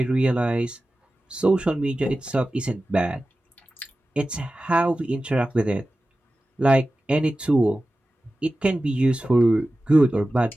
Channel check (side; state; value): both; normal; correlation 0.95